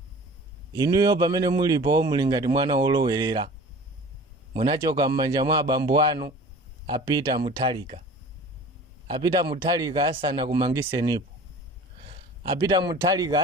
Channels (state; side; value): normal; both; correlation 0.42